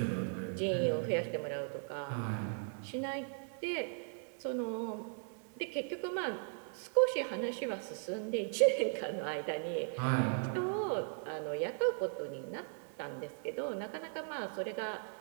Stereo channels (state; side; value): silent; left; 53 dB below the other